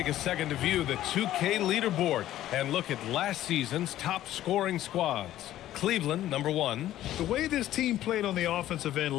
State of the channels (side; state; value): right; quieter; 13.4 dB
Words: a second to view the 2K leaderboard and look at last season's top scoring squads. Cleveland, number 1. The way this team played on the offensive end